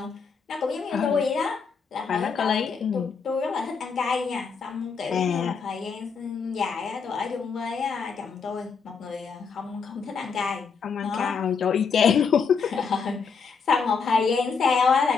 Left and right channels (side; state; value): right; quieter; 5.6 dB